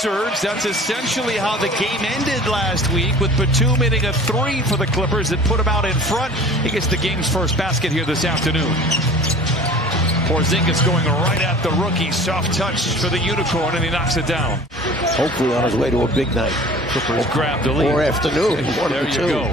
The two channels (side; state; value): both; normal; correlation 0.44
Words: That's essentially how the game ended last week, with Batum hitting a three for the Clippers that put him out in front. He gets the game's first basket here this afternoon. Porzingis going right at the rookie. Soft touch for the Unicorn, and he knocks it down. Hopefully on his way to a big night. Clippers grab the lead. Or afternoon. There you go.